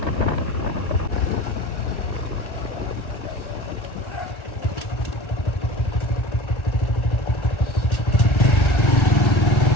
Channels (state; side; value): late; right; 1.4 ms